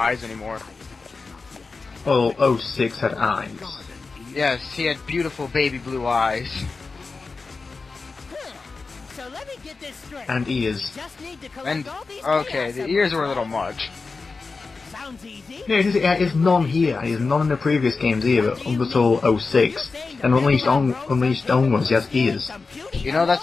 anymore. Well, 06 had eyes. Yes, he had beautiful baby blue eyes. So let me get this straight. And ears. Just need to collect And, all these okay, chaos the ears were a little symbols. much. Sounds easy. Yeah, it's none here. It's none in the previous games either, up until 06. And Unleashed onwards, he has ears. You know,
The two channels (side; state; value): right; quieter; 4.2 dB